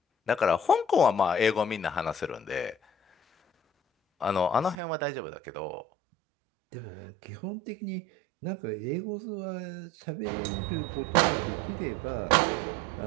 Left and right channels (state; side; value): drops out; left; at 4.8 s